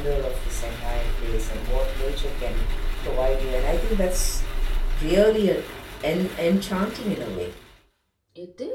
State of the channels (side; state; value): both; identical; correlation 1.00